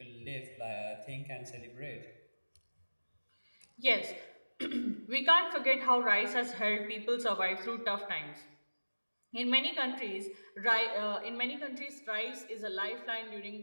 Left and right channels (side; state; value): both; inverted; correlation -1.00